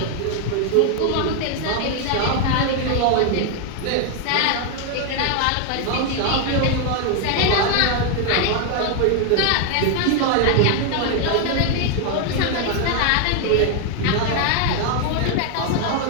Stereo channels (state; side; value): different; both; correlation 0.01